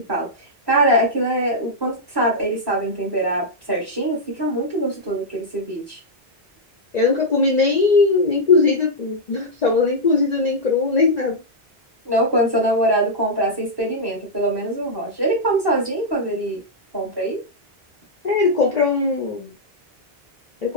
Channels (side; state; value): both; normal; correlation -0.07